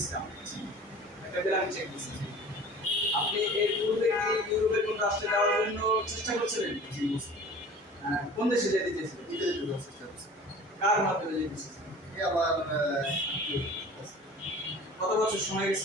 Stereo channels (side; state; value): both; normal; correlation 0.43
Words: স্টাম্প, একটা ব্ল্যাঙ্ক চেক দিয়েছেন। আপনি এর পূর্বে কি ইউরোপের কোন রাষ্ট্রে যাওয়ার জন্য চেষ্টা করছিলেন? জি, বুঝছি। কোন দেশে যেতে চেয়েছিলেন? ইতালিতে যাওয়ার চেষ্টা করছি। কার মাধ্যমে যেতে চেয়েছিলেন? এই আমার আত্মীয় আছে। কত বছর সময় গেছে